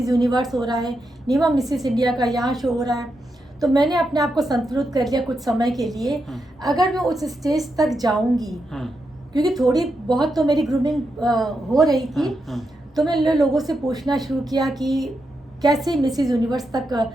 यूनिवर्स हो रहा है, नीमा मिसेस इंडिया का यहाँ शो हो रहा है। तो मैंने अपने आप को संतुलित कर लिया कुछ समय के लिए, अगर मैं उस स्टेज तक जाऊंगी, क्योंकि थोड़ी बहुत तो मेरी ग्रूमिंग हो रही थी, तो मैंने लोगों से पूछना शुरू किया कि कैसे मिसेस यूनिवर्स तक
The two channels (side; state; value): both; normal; correlation 0.85